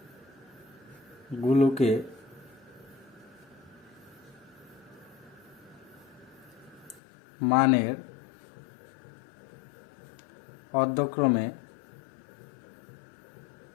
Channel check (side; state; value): right; drops out; at 7.0 s